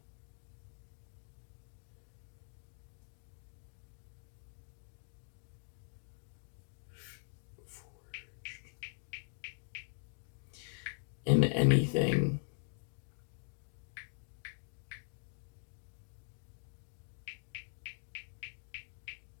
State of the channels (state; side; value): silent; right; digital silence